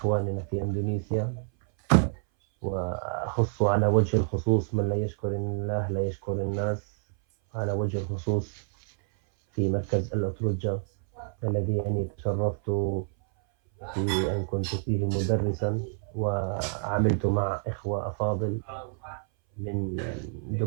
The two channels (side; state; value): left; silent; 58 dB below the other